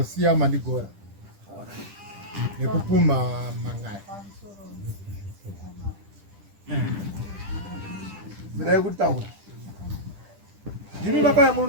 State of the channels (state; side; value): late; left; 10 ms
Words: Mandigora nekupumha mangai. Ndai kutaura. Ndini makaya